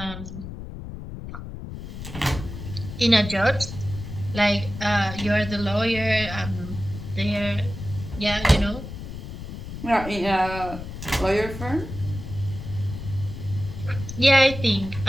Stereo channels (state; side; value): noise; left; rumble, 9 dB below the sound